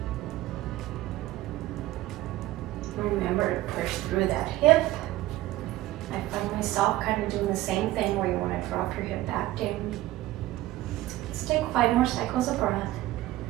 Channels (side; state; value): left; quieter; 16.3 dB